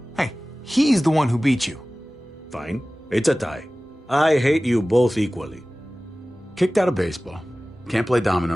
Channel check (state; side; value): normal; both; correlation 0.97